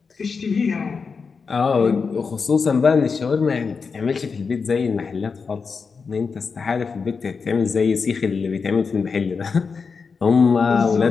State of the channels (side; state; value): right; quieter; 5.2 dB